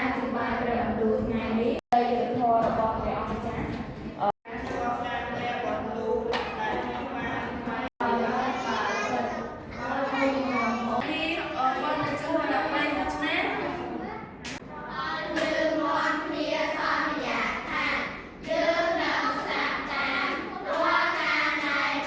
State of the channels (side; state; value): both; identical; correlation 1.00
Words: អធិប្បាយព្រះបន្ទូលថ្ងៃនេះដោយយុត្តិធម៌របស់ព្រះអង្គម្ចាស់របស់ការព្រះបន្ទូលដែលខ្ញុំបានថ្លែងឲ្យបានចិត្តឲ្យខ្ញុំមកនេះអរគុណចំពោះដល់ផ្នែកមួយឆ្នាំយើងមកគ្នាសន្យាថាយើងនឹងស្ដាប់តាមរាល់ការណែ